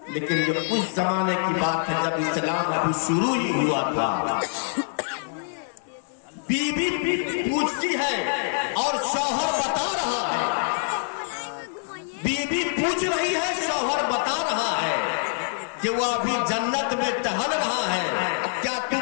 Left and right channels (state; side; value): silent; right; 62 dB below the other